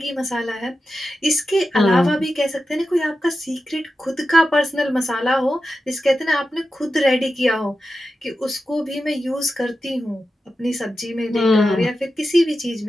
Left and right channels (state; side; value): normal; both; correlation 0.91